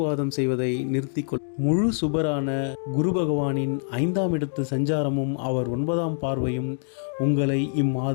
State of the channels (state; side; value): silent; right; digital silence